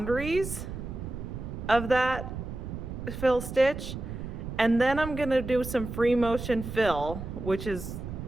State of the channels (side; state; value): right; noise; rumble, 7 dB below the sound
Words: of that fill stitch, and then I'm going to do some free motion fill, which is